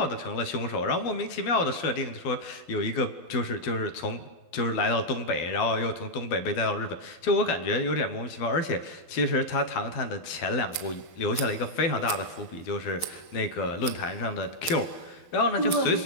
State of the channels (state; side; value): late; right; 12 ms